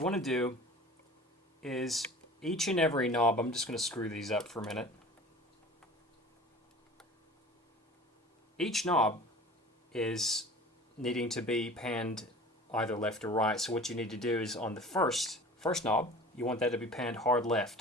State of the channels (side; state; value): both; normal; correlation 0.42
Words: want to do is each and every knob, I'm just going to screw these up for a minute. Each knob is needing to be panned either left or right. So what you need to do is on the first knob, you want that to be panned hard